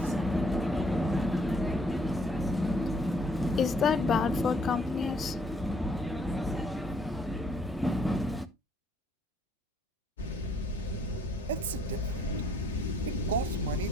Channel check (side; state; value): both; normal; correlation 0.65